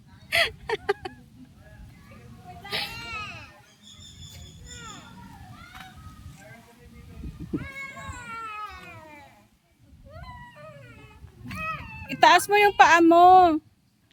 Itaas mo yung paa mo.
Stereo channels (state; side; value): identical; both; correlation 1.00